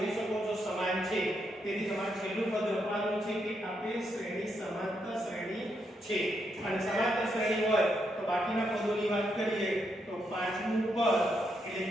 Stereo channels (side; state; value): both; normal; correlation 0.79